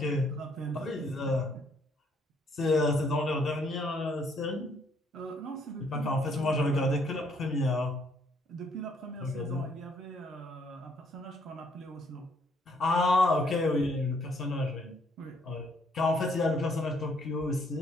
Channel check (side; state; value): both; normal; correlation 0.68